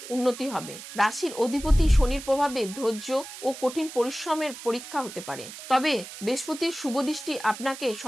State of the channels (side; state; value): right; noise; hiss, 13 dB below the sound